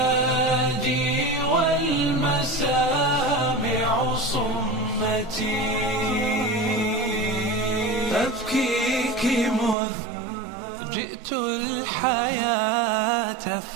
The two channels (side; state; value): left; drops out; at 9.8 s